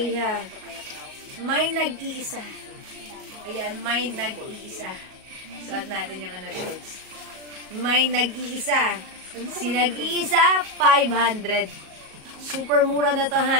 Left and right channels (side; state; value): left; late; 38 ms